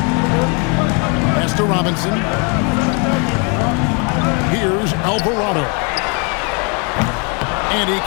Pass to Robinson. Here's Alvarado. And he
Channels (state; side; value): quieter; right; 34.9 dB